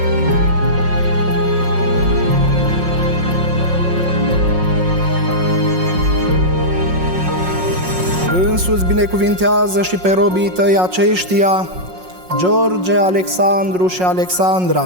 Însuți binecuvintează și pe robii tăi aceștia, George, Alexandru și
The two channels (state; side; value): late; left; 5.5 ms